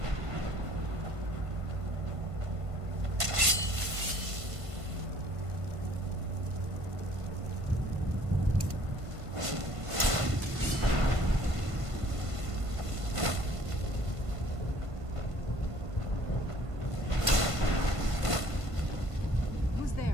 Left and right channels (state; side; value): late; left; 1.5 ms